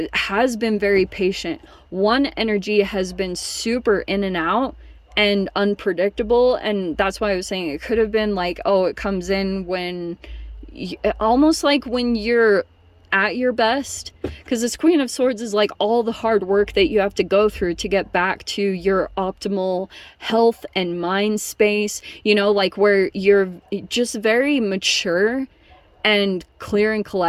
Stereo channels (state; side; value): identical; both; correlation 1.00